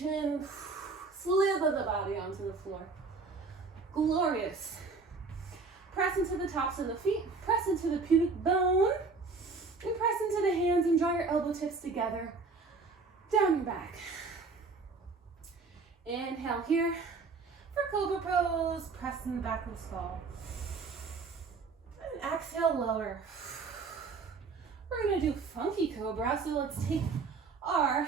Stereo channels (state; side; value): quieter; left; 4.3 dB